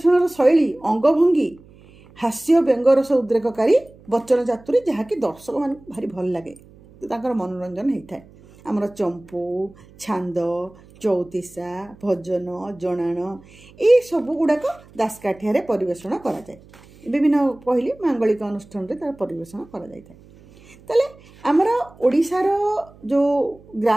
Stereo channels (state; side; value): noise; right; hum, 25 dB below the sound